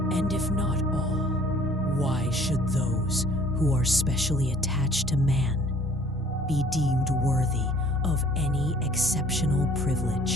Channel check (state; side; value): normal; both; correlation 0.54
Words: And if not all, why should those who are specially attached to man be deemed worthy of any exceptional